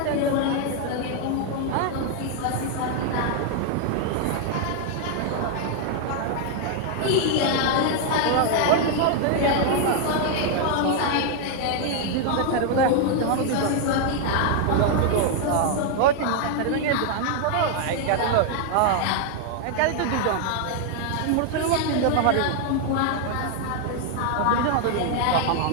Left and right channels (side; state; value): both; different; correlation 0.00